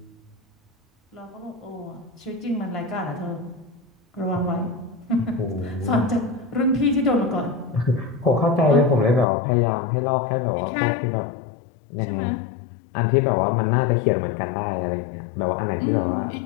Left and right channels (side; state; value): right; drops out; at 9.2 s